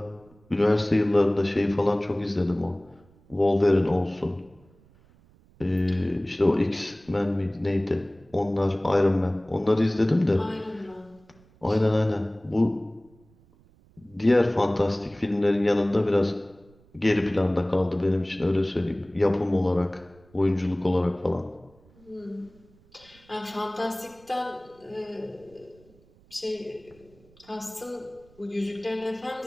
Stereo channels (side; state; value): right; noise; rumble, 29 dB below the sound